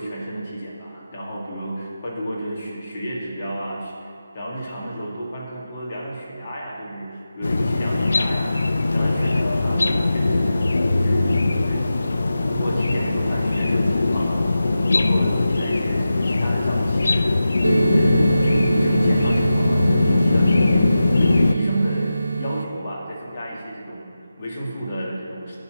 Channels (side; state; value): both; inverted; correlation -0.93